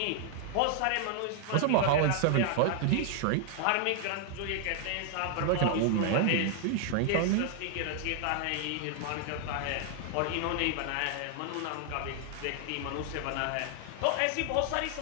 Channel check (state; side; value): different; both; correlation 0.00